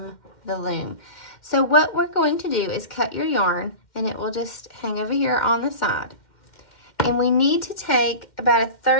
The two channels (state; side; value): late; right; 2.1 ms